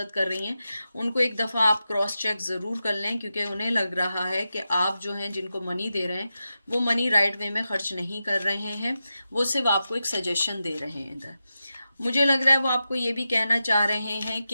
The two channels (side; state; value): both; inverted; correlation -0.90